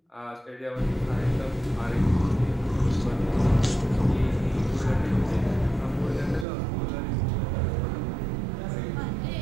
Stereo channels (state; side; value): drops out; left; at 6.5 s